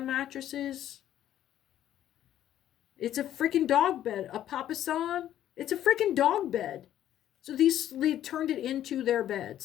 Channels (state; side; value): quieter; right; 11.7 dB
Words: mattresses. It's a freaking dog bed. A papasan. It's a freaking dog bed. So they turned it into their bed,